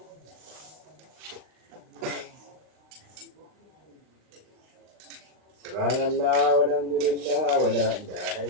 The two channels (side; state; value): left; late; 39 ms